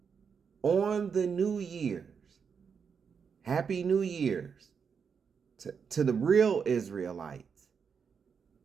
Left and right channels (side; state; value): left; quieter; 6.3 dB